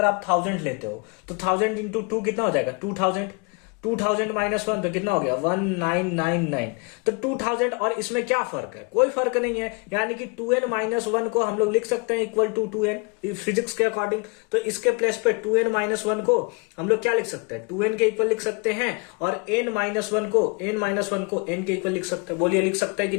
आप 1000 लेते हो तो 1000 इंटू 2 कितना हो जाएगा? 2000, 2000-1 तो कितना हो गया? 1999। तो 2000 और इसमें क्या फर्क है? कोई फर्क नहीं है, यानी कि 2n-1 को हम लोग लिख सकते हैं इक्वल टू 2n फिजिक्स के अकॉर्डिंग। तो इसके प्लेस पे 2n-1 को हम लोग क्या लिख सकते हैं? 2n के इक्वल लिख सकते हैं, और n-1 को n के इक्वल लिख सकते हैं। बोलिए लिख सकते हैं कि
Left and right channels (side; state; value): right; quieter; 31.6 dB